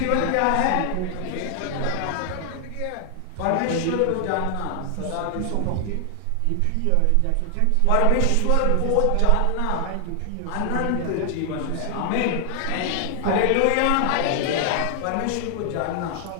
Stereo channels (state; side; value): different; both; correlation 0.00